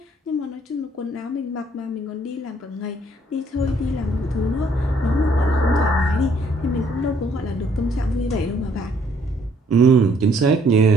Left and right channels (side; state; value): both; normal; correlation 0.65